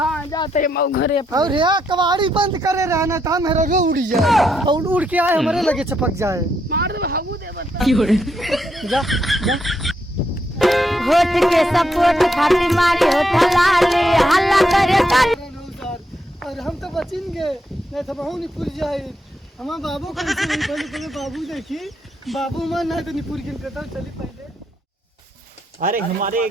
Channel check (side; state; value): both; normal; correlation 0.78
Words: जाते हम घरे और यहाँ कबाड़ी बंद करे रहना था मेरा रो उड़ जाए और उड़ के आए हमारे लगे चपक जाए। मार दे हबू दे बता। जा जा होठ के सपोर्ट खातिर मारी होठ लाली हल्ला करे कर। और हम तो बचेंगे नहीं तो बहु नहीं पुर जाए। हमारे बाबू को पहले बाबू देखी बाबू मन नहीं तो निपुर के कहता चली पहले। अरे हमारे